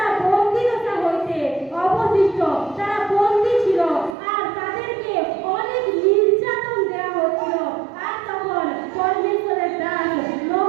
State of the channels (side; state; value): left; drops out; at 4.2 s